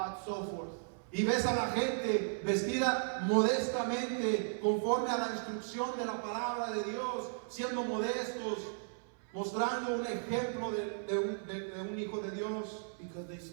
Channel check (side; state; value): left; silent; 54 dB below the other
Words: so forth. y ves a la gente vestida modestamente conforme a la instrucción de la palabra de Dios, siendo modestos, mostrando un ejemplo de un hijo de Dios, Because they